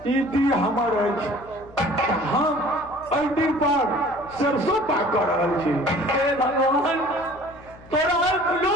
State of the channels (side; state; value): left; noise; hum, 22 dB below the sound